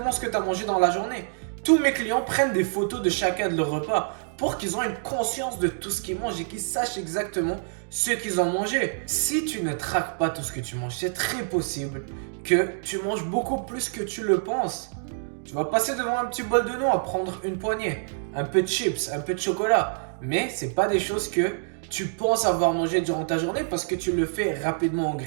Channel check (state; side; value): silent; left; digital silence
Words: ce que tu as mangé dans la journée. Tous mes clients prennent des photos de chacun de leurs repas pour qu'ils aient une conscience de tout ce qu'ils mangent et qu'ils sachent exactement ce qu'ils ont mangé. Si tu ne traques pas tout ce que tu manges, c'est très possible que tu manges beaucoup plus que tu le penses. Tu vas passer devant un petit bol de noix, prendre une poignée, un peu de chips, un peu de chocolat. Mais ce n'est pas des choses que tu penses avoir mangé durant ta journée parce que tu le fais rapidement en